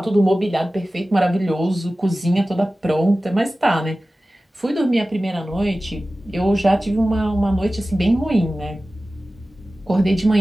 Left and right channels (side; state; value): both; normal; correlation 0.96